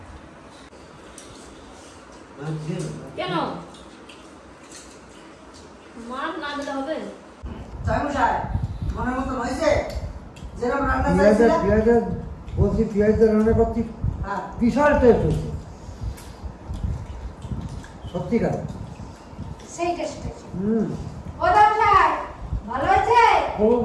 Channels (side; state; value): both; identical; correlation 1.00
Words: কেন মাছ না দিলে হবে? তাই মশাই মনের মতন হয়েছে যেরকম রান্না পেঁয়াজের চাইছিলাম? পেঁয়াজের বলছি পেঁয়াজের রান্না করছি, হ্যাঁ বিশাল টেস্ট হচ্ছে সত্যিকার। সেই টেস্ট হয়েছে। ও দামশাই ভালো হয়েছে? খুব